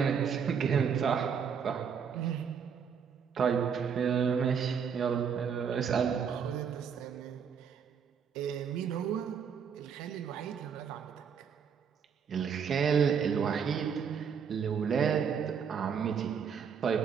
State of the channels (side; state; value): left; quieter; 7.0 dB